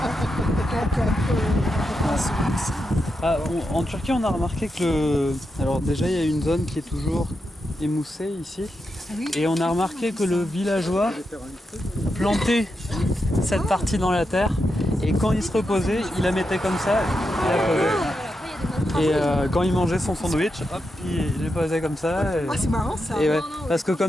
on peut prendre celui-ci. Ah, en Turquie, on a remarqué que alors déjà, il y a une zone qui est toujours émoussée ici. Oui. Et on a remarqué que le villageois plantait cette partie dans la terre. Et quand il se reposait, il la mettait comme ça. Et la posait. Et quand il mangeait son sandwich, hop, il les posait comme ça. Ah, c'est marrant ça. Et ouais, parce que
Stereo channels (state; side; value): normal; both; correlation 0.86